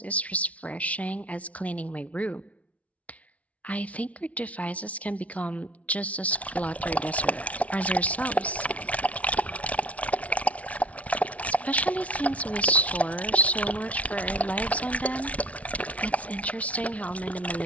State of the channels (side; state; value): right; late; 0.066 ms